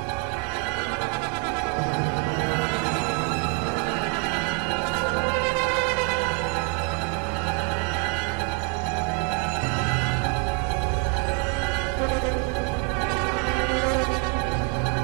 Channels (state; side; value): quieter; left; 35.8 dB